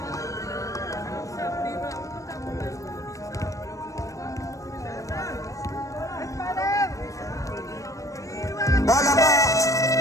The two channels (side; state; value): right; late; 0.16 ms